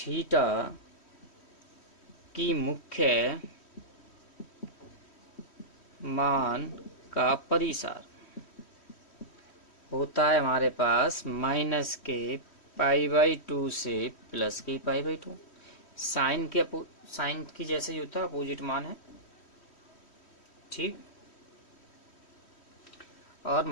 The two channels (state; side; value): late; right; 3.1 ms